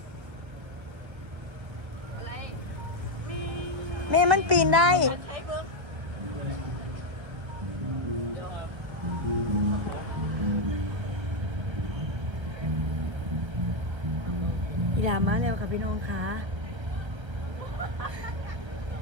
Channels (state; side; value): late; left; 1.3 ms